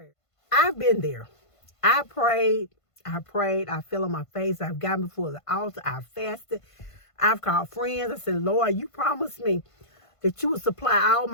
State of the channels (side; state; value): right; late; 1.5 ms